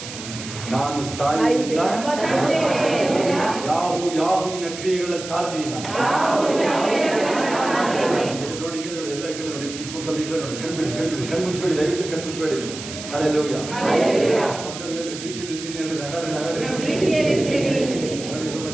ನಾನು ಸಾಯುವುದಿಲ್ಲ, ಯಾಹುವಿನ ಕ್ರಿಯೆಗಳ ಸಾರದಿಲ್ಲ. ನೋಡಿ ನೋಡಿ ಎಲ್ಲ ಕಡೆ ನೋಡಿ, ಚಿಕ್ಕ ಮಕ್ಕಳು ಈಗ ನೋಡಿ ಕಣ್ಮುಚ್ಬೇಡಿ, ದಯವಿಟ್ಟು ಕಣ್ಮುಚ್ಬೇಡಿ. ಹಲ್ಲೆಲೂಯಾ.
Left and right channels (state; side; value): noise; right; hiss, 11 dB below the sound